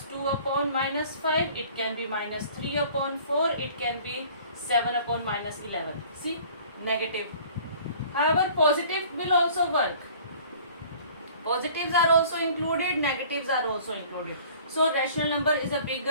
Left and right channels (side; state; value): both; inverted; correlation -0.50